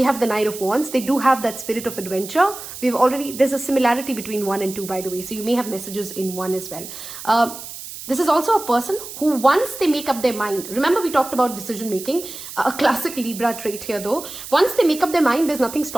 have the Knight of Wands. They do have that spirit of adventure. There's a similarity between 1 and 2, by the way, so you may have messages in 1 as well. This is also a person who, once they make up their mind, remember we talked about decision making, a classic Libra trait here though. Once they make up their mind, there's nothing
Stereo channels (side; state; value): right; noise; hiss, 12 dB below the sound